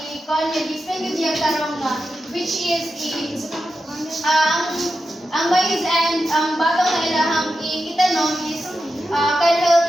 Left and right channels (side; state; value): both; normal; correlation 0.90